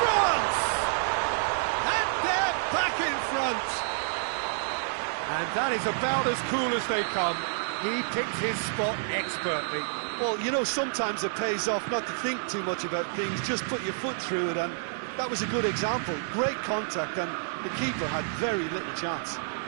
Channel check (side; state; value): left; silent; 59 dB below the other